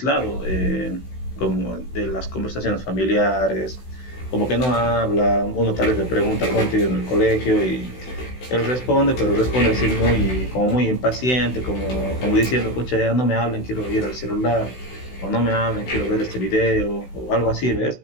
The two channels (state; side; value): late; right; 16 ms